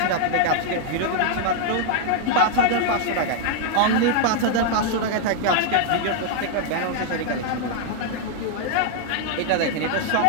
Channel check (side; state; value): both; different; correlation 0.00